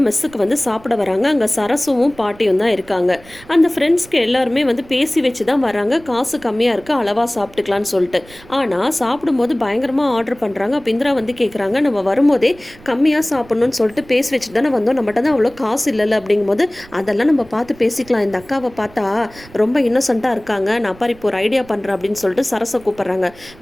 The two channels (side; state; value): right; noise; rumble, 23 dB below the sound